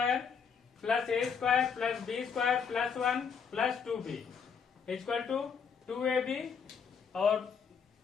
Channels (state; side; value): quieter; right; 6.4 dB